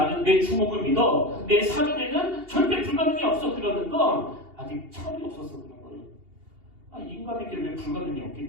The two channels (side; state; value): left; late; 2.8 ms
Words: 내 주목을 믿어, 내 사전에는 절대 불가능이 없어, 그러는 건 아직 철이 없어서 그런 거예요. 인간에게 왜 불가능이